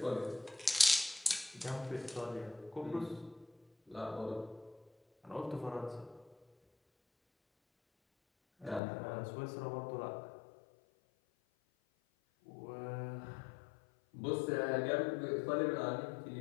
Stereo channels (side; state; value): right; drops out; at 8.8 s